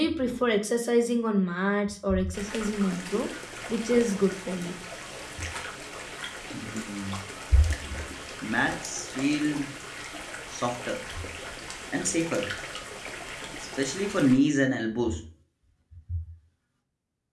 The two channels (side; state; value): both; identical; correlation 1.00